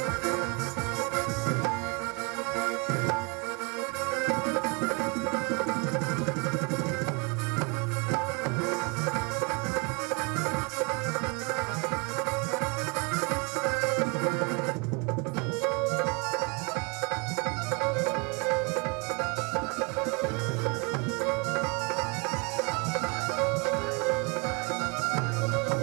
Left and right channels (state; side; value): quieter; left; 31.1 dB